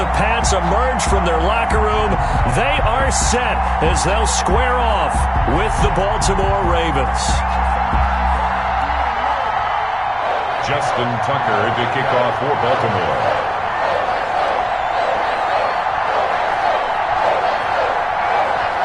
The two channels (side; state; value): both; identical; correlation 1.00